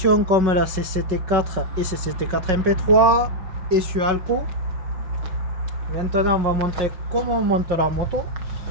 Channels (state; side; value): late; left; 5.4 ms